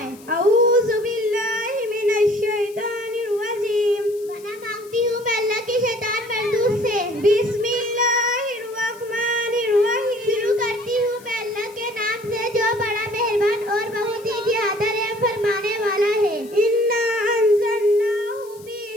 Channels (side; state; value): left; noise; hiss, 23 dB below the sound